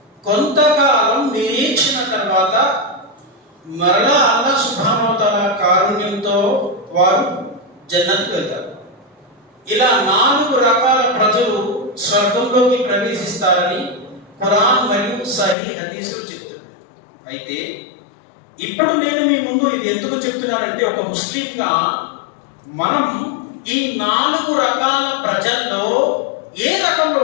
కొంతకాలం నిరీక్షణ తర్వాత మరలా అల్లాహ్ సుబ్హానహు వ తఆలా కారుణ్యంతో వారు జన్నత్కు వెళ్తారు। ఇలా 4 రకాల ప్రజలు స్వర్గంలోకి ప్రవేశిస్తారని ఖురాన్ మరియు సహీహ్ హదీసులు చెప్తారు। అయితే ఇప్పుడు నేను మీ ముందు ఇది ఎందుకు చెప్తున్నానంటే, ఒక ముస్లింగా మనం ఈ 4 రకాల ప్రజల్లో ఏ రకంలో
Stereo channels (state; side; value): drops out; right; at 15.6 s